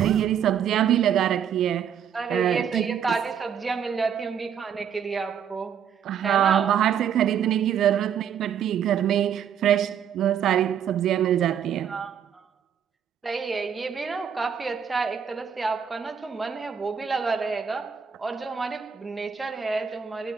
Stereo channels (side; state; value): left; quieter; 8.2 dB